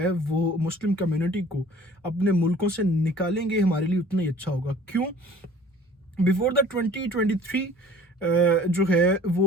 वो मुस्लिम कम्युनिटी को अपने मुल्कों से निकालेंगे, हमारे लिए उतना ही अच्छा होगा। क्यों? बिफोर द 2023 जो है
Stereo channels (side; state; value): both; normal; correlation 0.49